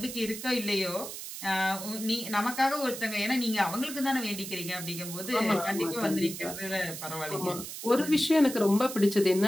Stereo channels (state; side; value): noise; right; hiss, 9 dB below the sound